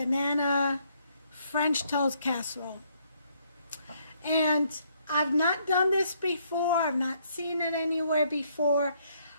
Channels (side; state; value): both; inverted; correlation -0.69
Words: French toast casserole. And I've not done this before. I've not seen it anywhere before.